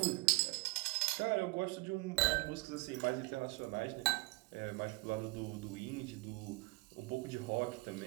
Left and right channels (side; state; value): left; quieter; 24.4 dB